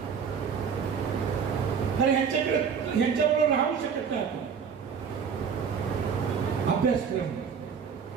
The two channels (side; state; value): left; quieter; 6.6 dB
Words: तर ह्यांच्याबरोबर राहू शकत नाही आपण. अभ्यासक्रम,